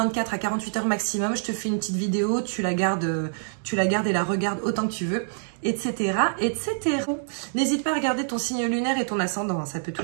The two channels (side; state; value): left; silent; digital silence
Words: à 48 heures maximum. Je te fais une petite vidéo, tu la gardes et la regardes autant que tu veux, etc. etc. N'hésite pas à regarder ton signe lunaire et ton ascendant, hein, ça peut